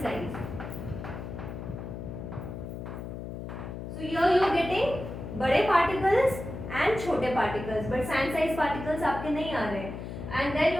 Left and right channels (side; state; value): left; noise; hum, 8 dB below the sound